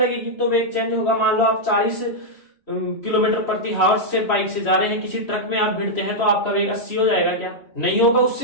तो वेग चेंज होगा। मान लो आप 40 किलोमीटर प्रति हावर्स से बाइक से जा रहे हैं, किसी ट्रक में आप भिड़ते हैं तो आपका वेग 80 हो जाएगा क्या? नहीं होगा,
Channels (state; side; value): late; right; 3.1 ms